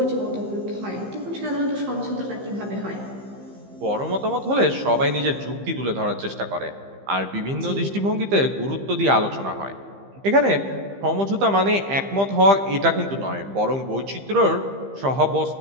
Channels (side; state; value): left; late; 15 ms